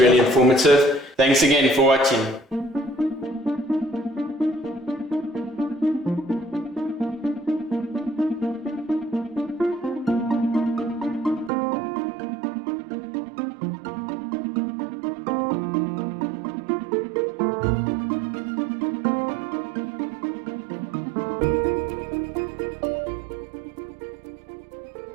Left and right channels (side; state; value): left; drops out; at 11.5 s